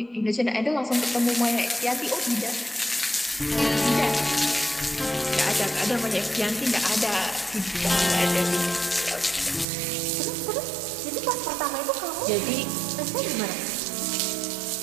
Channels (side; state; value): left; drops out; at 9.7 s